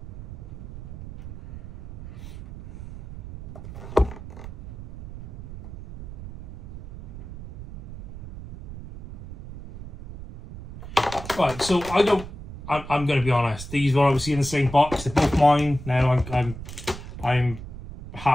Right, so I'm going to be honest. These were obviously in the same box. They're both mine. Now I'm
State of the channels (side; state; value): right; noise; rumble, 12 dB below the sound